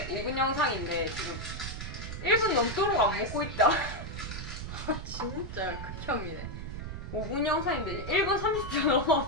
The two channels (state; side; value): noise; right; rumble, 7 dB below the sound